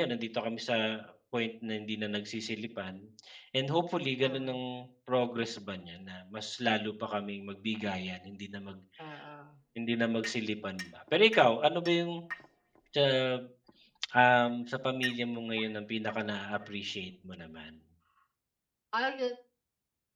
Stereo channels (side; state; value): both; identical; correlation 1.00